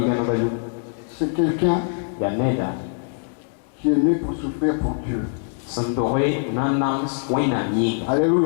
c'est quelqu'un qui est né pour souffrir pour Dieu.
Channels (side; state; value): right; silent; digital silence